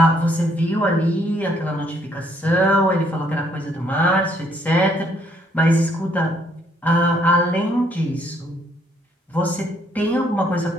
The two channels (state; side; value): normal; both; correlation 0.68